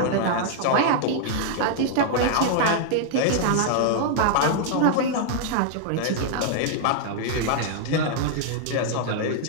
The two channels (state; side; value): different; both; correlation -0.01